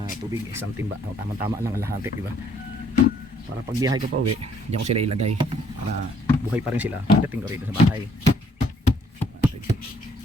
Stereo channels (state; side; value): normal; both; correlation 0.64